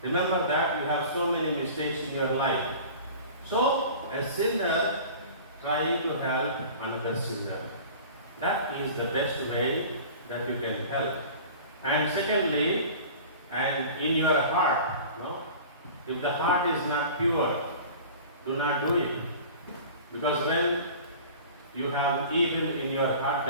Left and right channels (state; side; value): inverted; both; correlation -0.41